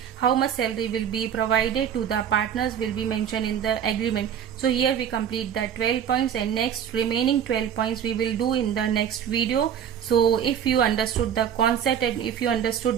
how much salary will be provided to the partners will be mentioned in the agreement. So here we complete the 12 points, and next remaining 12 points we will do in the next video. So if you understood the concept and if you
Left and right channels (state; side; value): quieter; left; 8.8 dB